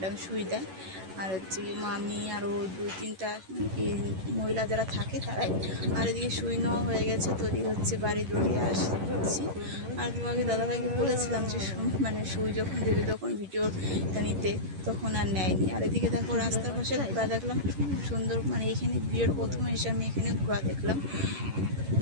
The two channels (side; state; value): left; late; 11 ms